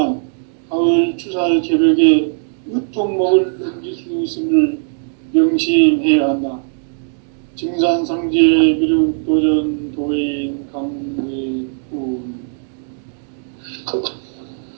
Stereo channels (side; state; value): left; silent; 65 dB below the other